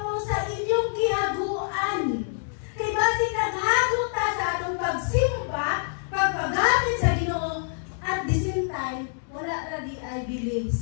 sa inyong gihaguan. Kay basi naghagot ta sa atong pagsimba, pagpagamit sa Ginoo, at the same time, wala ra di ay believe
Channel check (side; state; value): right; silent; digital silence